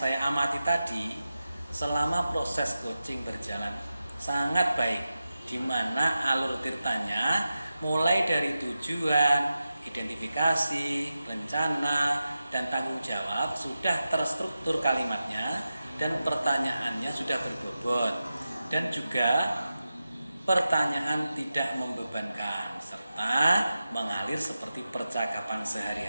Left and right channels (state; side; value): inverted; both; correlation -0.92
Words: amati tadi, selama proses coaching berjalan sangat baik, di mana alur ceritanya mulai dari tujuan, identifikasi, rencana, dan tanggung jawab sudah terstruktur kalimatnya dan pertanyaannya sudah berbobot. Dan juga pertanyaan tidak membebankan serta mengalir seperti percakapan